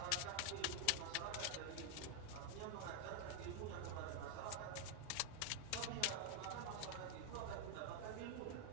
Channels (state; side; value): different; both; correlation 0.01